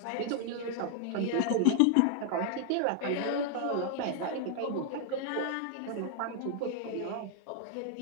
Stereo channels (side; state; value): both; different; correlation 0.00